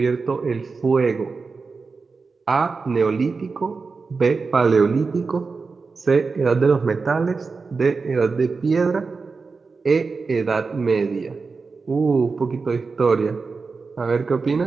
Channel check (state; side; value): quieter; left; 4.5 dB